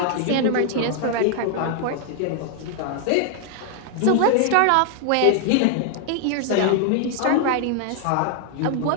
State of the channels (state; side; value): different; both; correlation 0.00